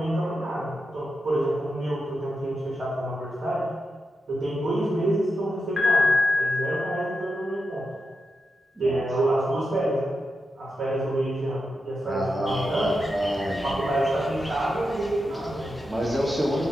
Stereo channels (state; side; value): normal; both; correlation 0.88